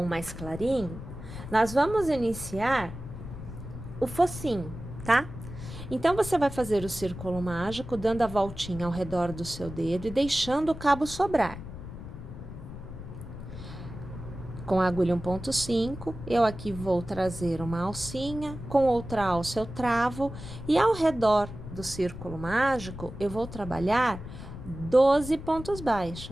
mais clarinho, nós vamos iniciar o focinho, tá? Então, você vai fazer o círculo mágico, dando a voltinha ao redor do seu dedo e deixando o cabo sobrar. Com a agulha 1,5, eu aqui vou trazer uma alcinha, com outra alça eu travo, e ao redor do círculo mágico, eu vou trabalhar 12 pontos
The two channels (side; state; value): left; noise; rumble, 11 dB below the sound